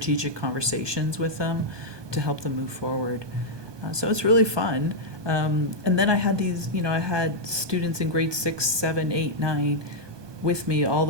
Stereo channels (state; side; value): late; left; 1.2 ms